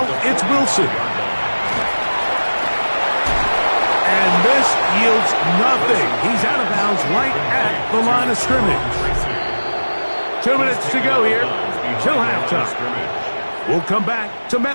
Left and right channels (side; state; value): both; inverted; correlation -1.00